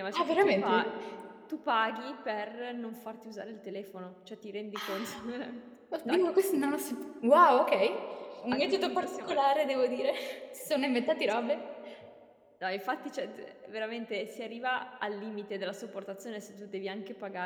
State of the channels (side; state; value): both; identical; correlation 1.00